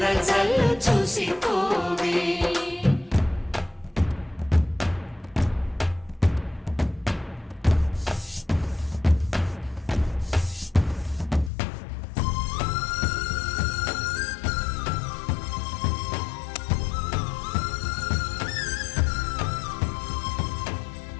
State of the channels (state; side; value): drops out; right; at 11.5 s